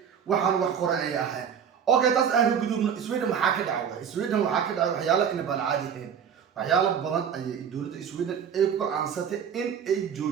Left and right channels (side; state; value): left; quieter; 7.8 dB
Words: وحن وحقر أي أحد أوكي تاس أهل قدوم سويدن محاكد عوضة سويدن محاكد عوضة حيالا إن بالعادي هين waxyaalo badan ayay dawladda Sweden ay ku aansatay in ay